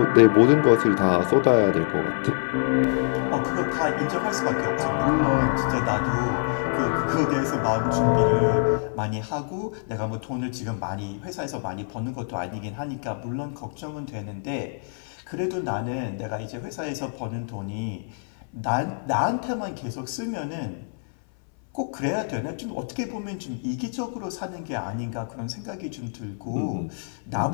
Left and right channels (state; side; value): silent; right; 61 dB below the other